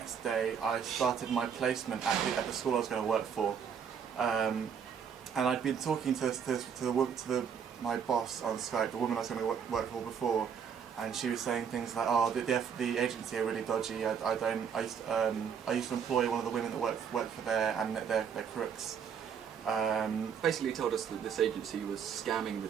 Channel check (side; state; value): left; quieter; 7.3 dB